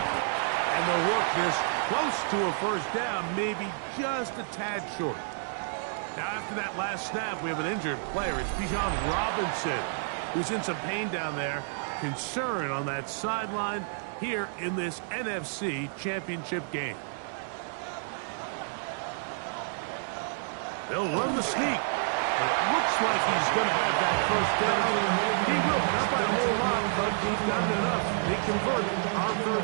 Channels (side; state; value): left; silent; digital silence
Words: And they'll work this close to a first down, maybe just a tad short. Now, after that last snap, we have an injured player. It's Bijan Robinson, who's in some pain down there. Concern on that sideline here in this NFC Championship game. They'll run the sneak. And it looks like he's going to have that first down. He will, not by a whole lot, but he's done enough. They convert on